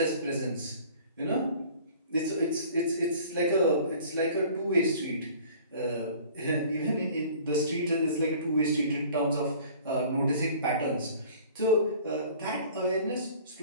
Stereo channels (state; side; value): inverted; both; correlation -0.48